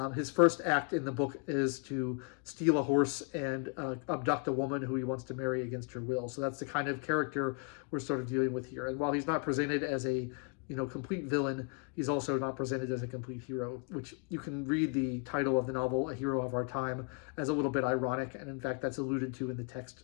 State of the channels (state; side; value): quieter; right; 38.2 dB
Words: His first act in the book is to steal a horse and abduct a woman who he wants to marry against her will. So that's the kind of character we're sort of dealing with here. And while he's not presented as a complete villain, he's also not presented as a complete hero, which you can read the title of the novel, A Hero of Our Time, as a little bit ironic. And in fact, that's alluded to in the text